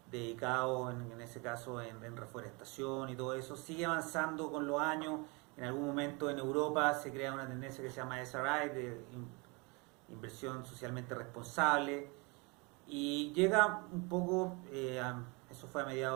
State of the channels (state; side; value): quieter; left; 29.0 dB